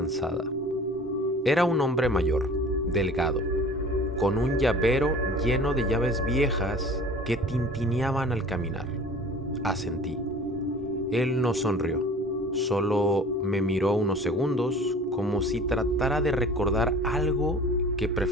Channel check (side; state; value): both; normal; correlation 0.44